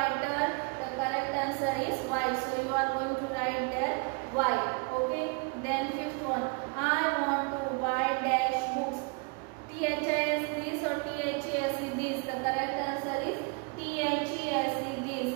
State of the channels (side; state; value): left; quieter; 32.6 dB